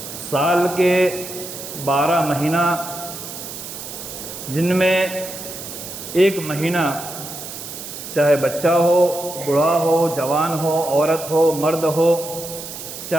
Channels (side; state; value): right; noise; hiss, 10 dB below the sound